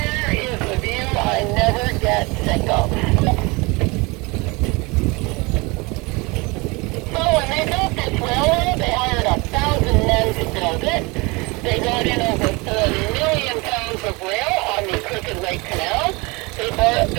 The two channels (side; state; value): left; quieter; 26.1 dB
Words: is the view I never get sick of. So when they built this railroad, they hired 1,000 men to build it. They brought in over 4 million pounds of rail on the Crooked Lake Canal. They